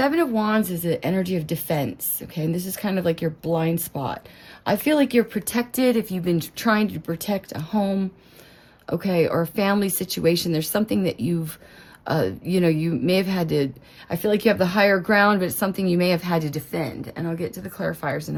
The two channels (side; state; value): both; identical; correlation 1.00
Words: of Wands is the energy of defense, okay? And this is kind of like your blind spot. I feel like you're protected if you've been trying to protect a home, okay, or a family situation. There's something that you've You know, you may have had to, I feel like you have the higher ground, but it's something you may have had to defend. And I'll get to the clarifiers in